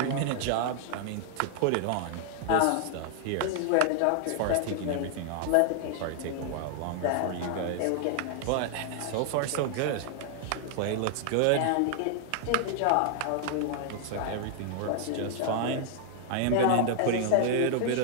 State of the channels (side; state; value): both; different; correlation -0.01